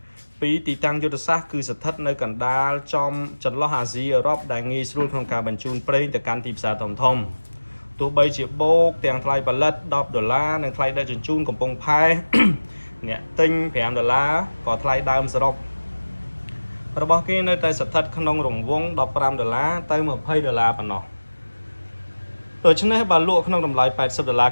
ពីទីតាំងយុទ្ធសាស្ត្រគឺស្ថិតនៅកណ្ដាលចន្លោះអាស៊ីអឺរ៉ុបដែលងាយស្រួលក្នុងការបញ្ជូនប្រេងទៅកាន់ទីផ្សារធំទោះបីជាបូកទាំងថ្លៃផលិត10ដុល្លារនិងថ្លៃដឹកជញ្ជូនកំពង់ផែ អ្នកទិញ5ដុល្លារក៏ថ្លៃដើមសរុបរបស់គេនៅតែស្ថិតក្នុងរង្វង់15ដុល្លារទៅ20ដុល្លារប៉ុណ្ណោះដូច្នេះបើលក់ក្នុងតម្លៃ80ដុល្លារ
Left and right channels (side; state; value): both; inverted; correlation -1.00